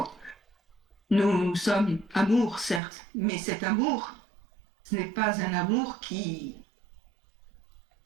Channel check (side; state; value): left; drops out; at 2.8 s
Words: Nous sommes amour, certes, mais cet amour, ce n'est pas un amour qui